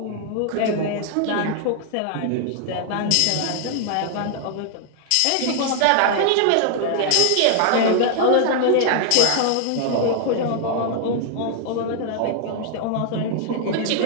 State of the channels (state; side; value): different; both; correlation 0.00